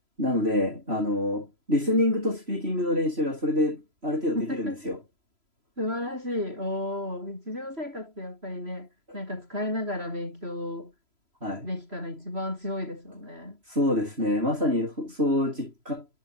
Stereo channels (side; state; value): left; late; 3.0 ms